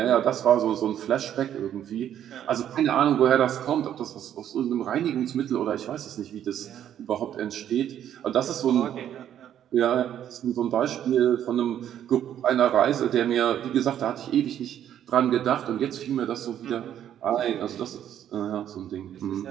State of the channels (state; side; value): quieter; left; 10.4 dB